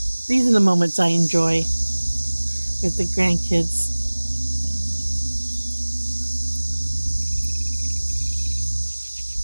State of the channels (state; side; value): inverted; both; correlation -1.00